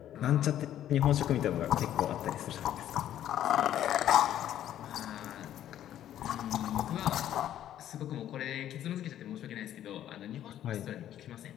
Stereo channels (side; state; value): right; quieter; 11.5 dB